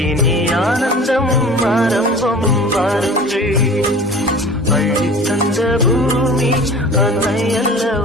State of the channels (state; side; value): normal; both; correlation 0.42